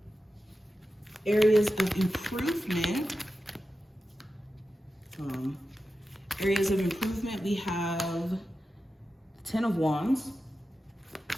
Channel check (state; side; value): normal; both; correlation 0.92